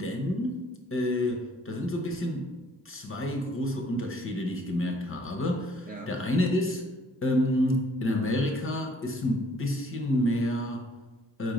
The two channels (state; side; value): normal; both; correlation 0.62